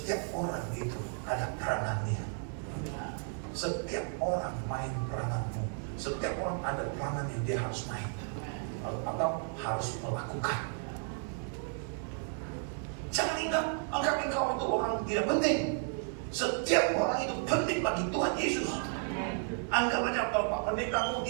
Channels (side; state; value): left; silent; 56 dB below the other